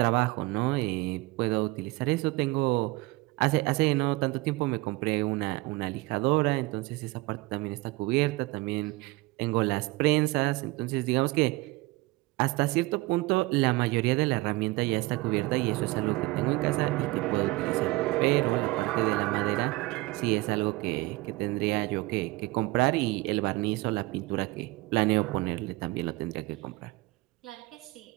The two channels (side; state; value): left; quieter; 21.8 dB